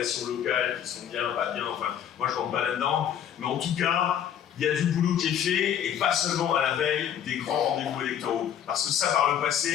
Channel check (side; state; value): right; quieter; 9.5 dB